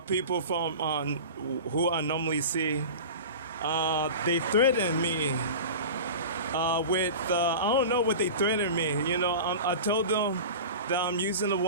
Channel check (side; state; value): both; inverted; correlation -0.33